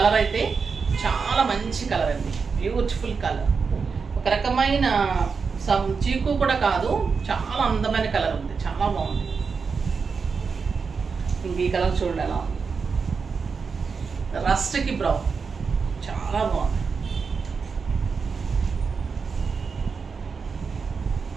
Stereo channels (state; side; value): quieter; left; 5.3 dB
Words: అయితే చాలా మంచి కలర్ అండి, బ్యూటిఫుల్ కలర్. ఒక రకమైన చీకు కూడా కాదు, చాలా అందమైన కలర్ ఉంది, చాలా బాగుంది. ఇంక ఈ కలర్ చూడండి ఎలా ఉంది, రస్ట్కి బ్రౌన్, చాలా బాగుంది.